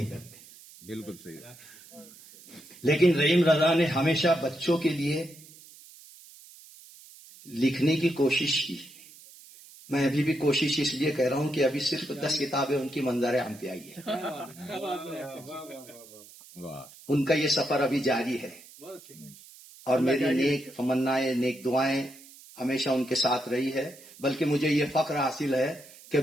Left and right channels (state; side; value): noise; right; hiss, 21 dB below the sound